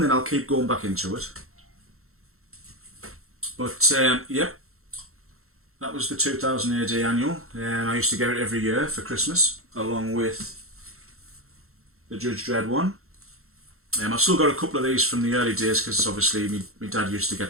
then I'll keep going back into it. But yep, that was the 2000 AD annual. I used to get it every year for Christmas, along with the Judge Dredd one. I've still got a couple of these from the early days, because obviously my dad used to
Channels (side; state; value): left; late; 0.63 ms